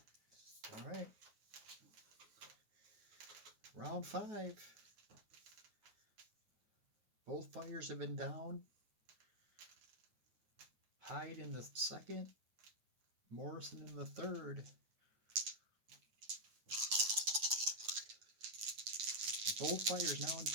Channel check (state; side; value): late; left; 9.4 ms